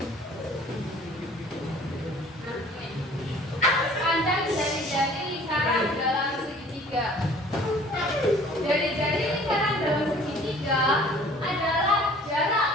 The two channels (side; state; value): both; normal; correlation 0.51